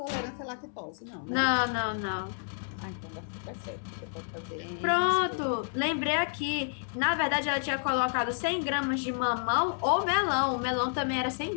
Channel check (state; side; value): silent; right; 58 dB below the other